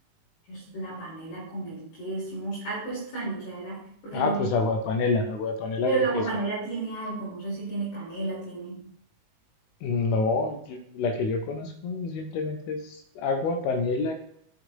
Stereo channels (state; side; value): late; right; 19 ms